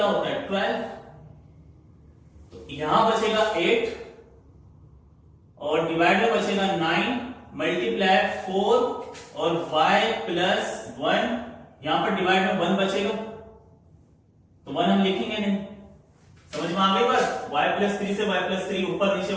होता है 12। तो यहां बचेगा 8 और डिवाइड में बचेगा 9 मल्टीप्लाई 4 और y प्लस 1, यहां पर डिवाइड में 1 बचेगा, तो 1 हम लिखेंगे नहीं। समझ में आ गई बात, y प्लस 3 से y प्लस 3 ऊपर नीचे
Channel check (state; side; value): identical; both; correlation 1.00